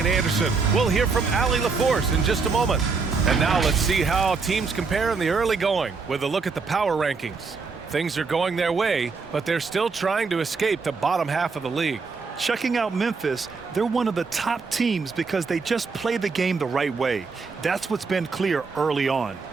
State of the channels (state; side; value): quieter; left; 4.7 dB